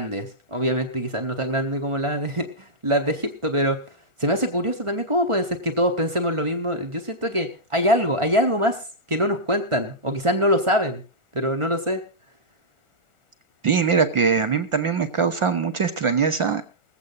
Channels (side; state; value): left; late; 1.4 ms